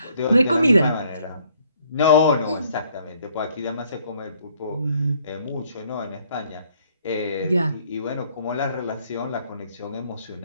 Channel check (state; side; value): inverted; both; correlation -0.64